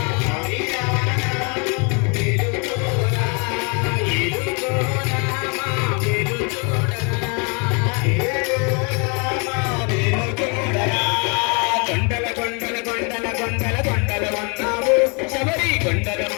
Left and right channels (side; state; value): right; quieter; 33.5 dB